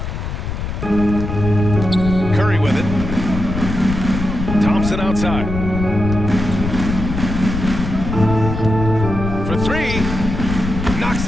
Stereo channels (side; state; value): left; noise; rumble, 5 dB below the sound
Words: Curry with it. Thompson outside. For 3. Knocks